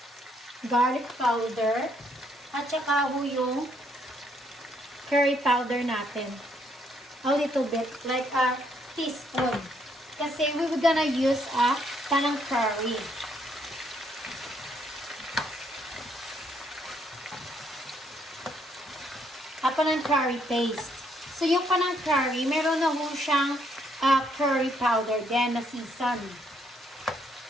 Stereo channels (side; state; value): both; normal; correlation 0.71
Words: Garlic powder. At saka yung curry powder natin. A little bit. Like a teaspoon. Kasi we were gonna use a Panang Curry. A Panang Curry paste. So, yung Panang Curry, meron na ho siyang curry powder din na season.